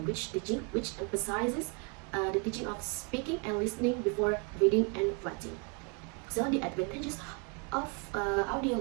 teaching which emphasizes the teaching of speaking and listening before reading and writing. So the advantages of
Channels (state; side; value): quieter; left; 34.2 dB